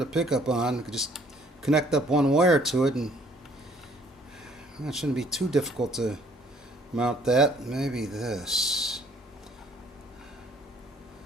pickup on. We could just connect up one wire to it, and it shouldn't be too difficult to mount that. Maybe this.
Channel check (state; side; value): normal; both; correlation 0.60